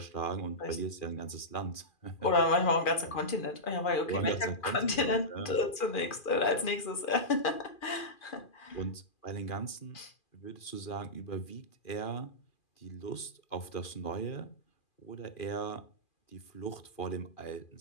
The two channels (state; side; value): late; right; 2.4 ms